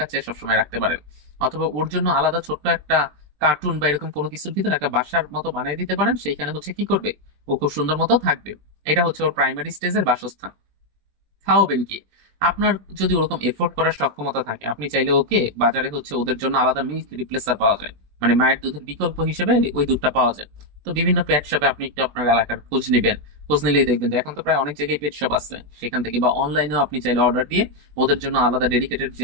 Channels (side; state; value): left; late; 20 ms